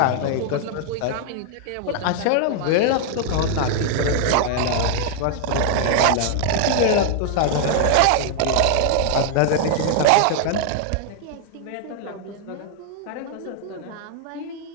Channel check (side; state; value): both; different; correlation -0.01